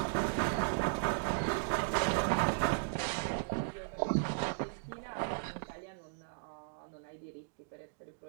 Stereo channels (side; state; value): left; silent; digital silence